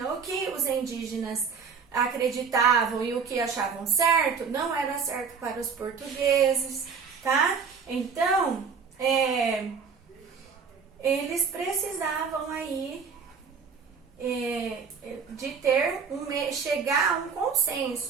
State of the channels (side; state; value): left; quieter; 5.8 dB